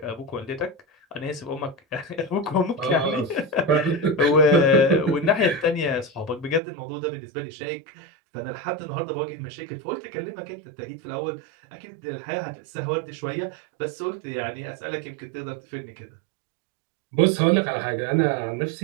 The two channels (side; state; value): left; drops out; at 6.6 s